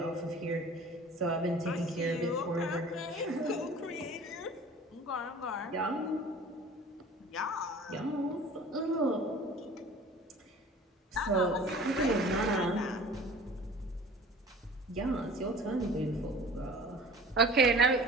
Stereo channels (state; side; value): normal; both; correlation 0.44